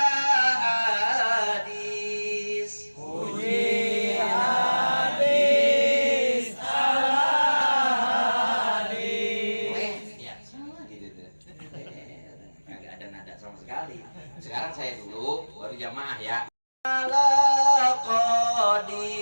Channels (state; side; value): inverted; both; correlation -1.00